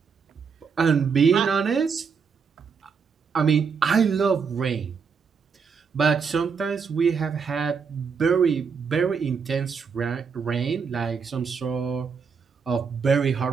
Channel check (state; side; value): quieter; left; 5.9 dB